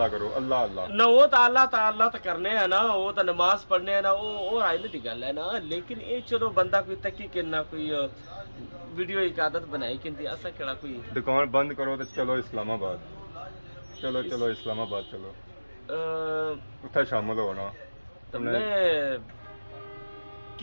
करो अल्लाह अल्लाह ना वो तो अल्लाह तो करने है ना वो तो नमाज पढ़ने है ना वो आइले की गल है ना लेकिन ये चलो बंदा कोई तकी के ना कोई वीडियो की आदत बनाई कि ऐसा केड़ा कोई दुकान बंद करो तो चलो इस्लामाबाद चलो इस्लामाबाद चलो उत्थे शामिल हो ना तुमने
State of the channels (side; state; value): both; inverted; correlation -1.00